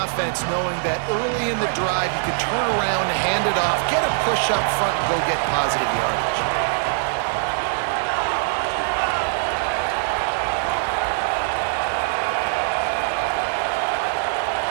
knowing that early in the drive you can turn around, hand it off, get a push up front, and go get positive yardage.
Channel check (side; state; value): left; silent; 64 dB below the other